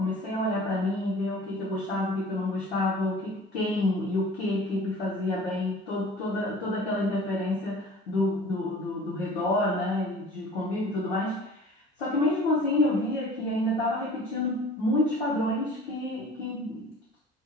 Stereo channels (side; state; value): both; normal; correlation 0.45